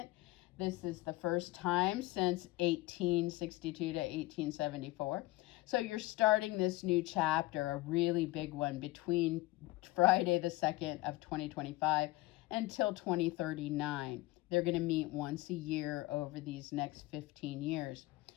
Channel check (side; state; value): right; quieter; 19.6 dB